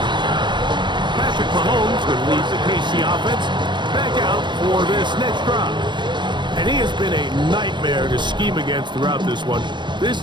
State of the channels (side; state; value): left; late; 0.22 ms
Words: Patrick Mahomes will lead the KC offense back out for this next drive. And he has been a nightmare to scheme against throughout this one. This